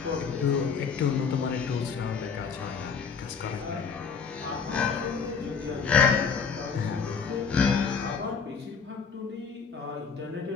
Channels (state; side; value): quieter; right; 5.9 dB